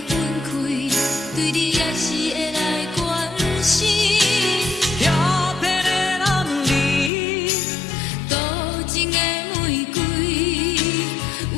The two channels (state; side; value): drops out; right; at 7.1 s